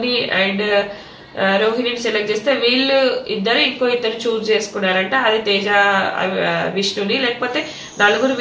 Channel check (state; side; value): identical; both; correlation 1.00